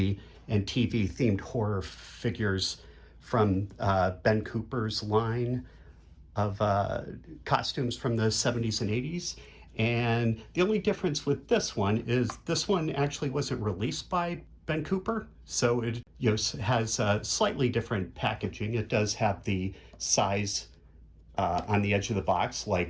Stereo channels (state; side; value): identical; both; correlation 1.00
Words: and TV themed horror figures from Ben Cooper's line of costumes from the 70s and 80s. And the only difference with this one is this one actually wasn't released by Ben Cooper, so it has slightly different packaging. It does have the size on the edge of the box,